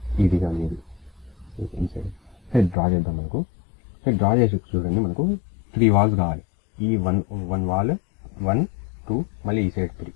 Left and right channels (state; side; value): drops out; right; at 2.8 s